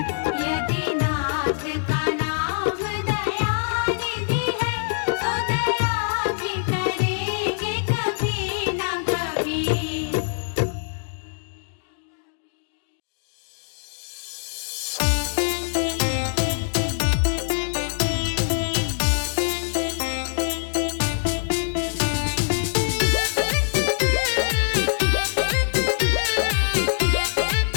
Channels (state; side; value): silent; right; 63 dB below the other